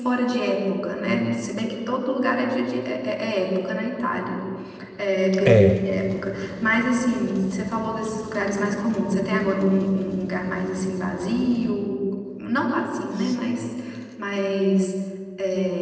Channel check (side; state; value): both; identical; correlation 1.00